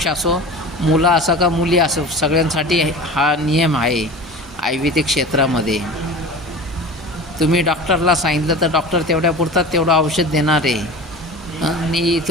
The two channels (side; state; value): both; normal; correlation 0.35